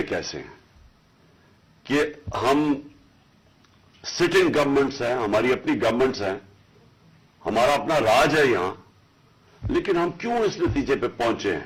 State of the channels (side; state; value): both; identical; correlation 1.00